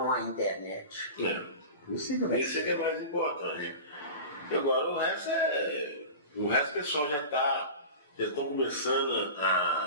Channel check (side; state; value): both; inverted; correlation -0.32